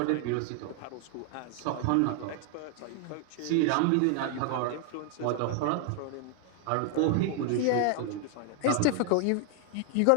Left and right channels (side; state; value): both; different; correlation 0.00